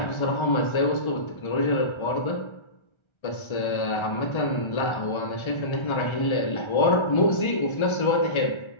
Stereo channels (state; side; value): late; right; 1.3 ms